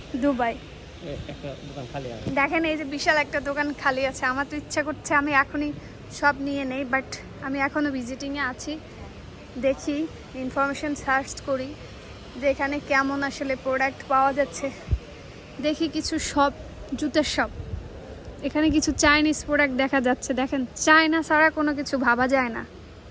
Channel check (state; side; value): identical; both; correlation 1.00